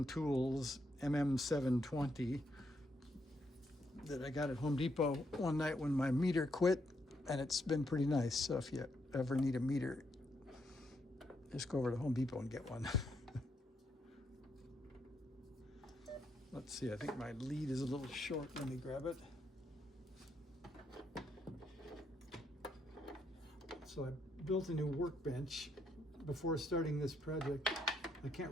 Tools MM720 that I got at Home Depot one night when my meter quit, and it's been pretty nice. So if you ever need a meter, just go over to Home Depot and get one. Let's see, I think my lead is a little short. Let me grab it. So I built a new workbench before starting this project. I can't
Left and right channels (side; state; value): both; normal; correlation 0.77